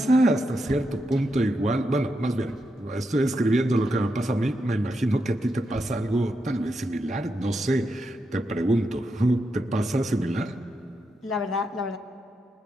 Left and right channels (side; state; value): both; normal; correlation 0.84